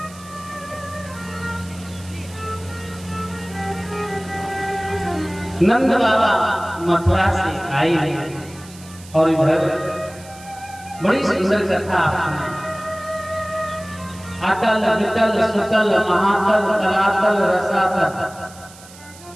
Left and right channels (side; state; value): right; noise; hiss, 20 dB below the sound